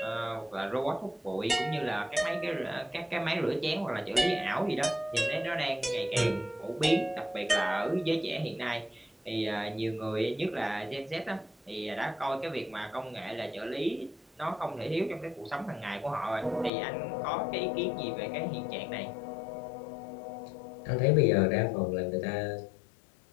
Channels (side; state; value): right; drops out; at 16.7 s